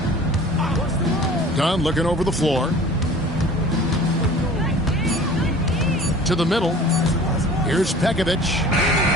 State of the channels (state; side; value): normal; both; correlation 0.44